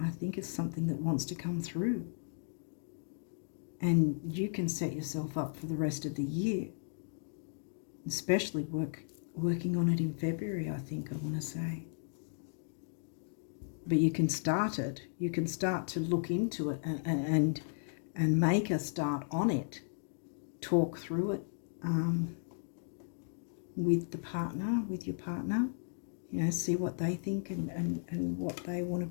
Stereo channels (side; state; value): right; silent; digital silence